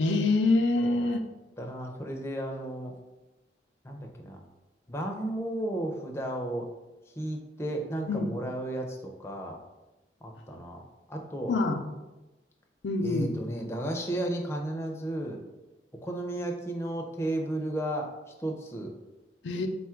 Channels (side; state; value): both; normal; correlation 0.71